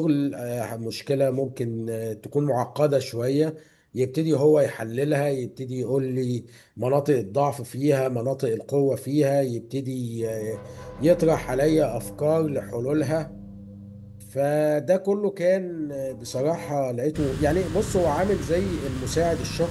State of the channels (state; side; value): identical; both; correlation 1.00